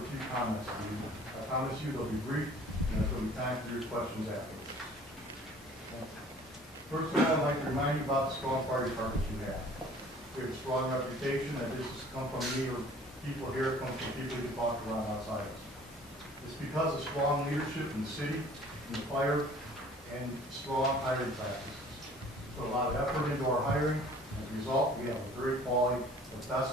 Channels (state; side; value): normal; both; correlation 0.51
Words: few comments to you. I promise you they'll be brief, and there'll be time for your questions afterwards. First of all, I'd like to remind you about the strong fire department you have. We have a strong reputation, and this has come from me or people here, it comes from people who talk around outside us. It's because of strong leadership in the city, in the fire, and strong hiring practices. We put a lot of effort into our hiring. As a result, we have a very quality, the